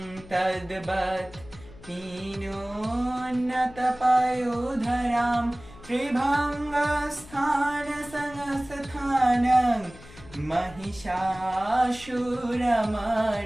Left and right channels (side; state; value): left; noise; hum, 19 dB below the sound